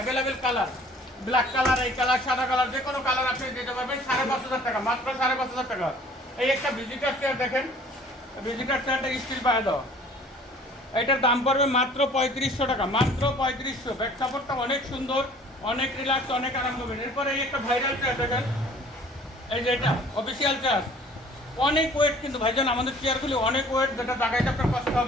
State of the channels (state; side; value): normal; both; correlation 0.52